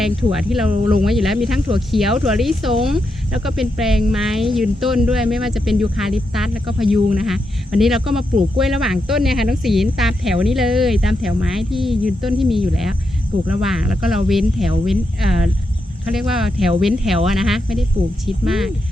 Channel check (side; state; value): both; normal; correlation 0.84